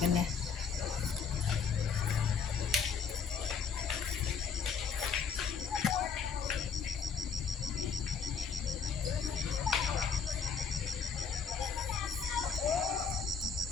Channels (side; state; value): right; quieter; 6.1 dB